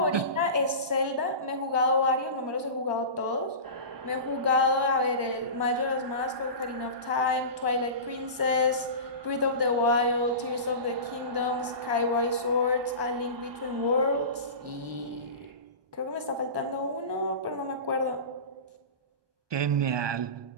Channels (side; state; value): left; late; 1.2 ms